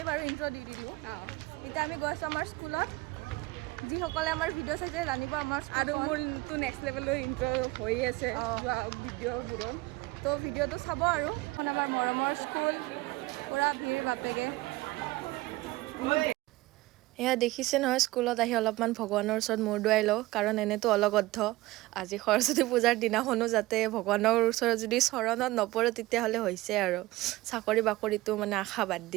বাৰু ইন্ট্ৰো দি দিলো এটা আমি গৈছো আমাৰ স্কুলত যি সকলে আমাৰ ভিডিও চাইছে জানিব আমাৰ আৰু মোৰ টু নেক্সট লেভেলৰ ইন্ট্ৰো হৈ আছে ভিডিওবোৰ তো ভিডিওটো চাব আৰু এখন আমাৰ মৰমৰ স্কুল পুৰা ভিৰ বাপেগে এয়া দেখিছে নহয় স্কুলত আহি অলপমান ভগৱানৰ ওচৰত মূৰ দুৱাই লওঁ কাৰণ এনেতো অলগদ্ধ আজি সৰস্বতী পূজাৰ দিনাখনো যাতে ভগৱানৰ ওচৰত যদি চৰণত নপৰে তেতিয়াহ'লে হৈছে আৰু চাকৰি বাকৰিটো মানে আশা বাদ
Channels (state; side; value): quieter; left; 19.3 dB